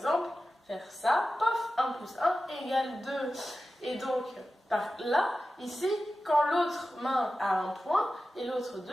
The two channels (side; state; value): both; normal; correlation 0.94